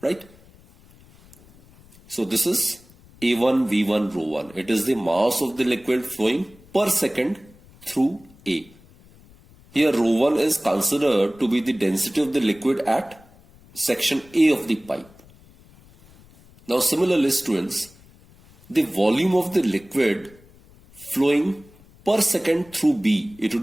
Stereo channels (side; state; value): left; noise; rumble, 26 dB below the sound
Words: right? So this is A1 V1 rho 1. It is the mass of the liquid flowing per second through A. Here rho 1 is considered to be the density of the liquid at section A of the pipe. Now similarly, students, the volume of the liquid flowing per second through B, it